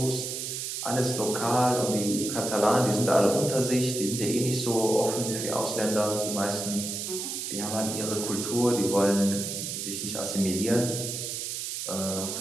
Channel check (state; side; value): noise; right; hiss, 4 dB below the sound